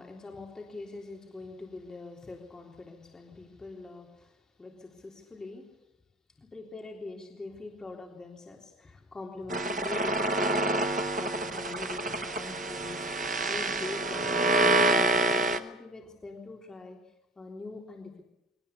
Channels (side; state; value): both; normal; correlation 0.37